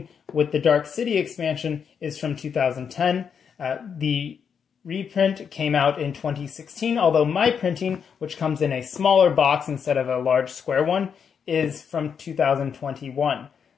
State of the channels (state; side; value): quieter; right; 7.0 dB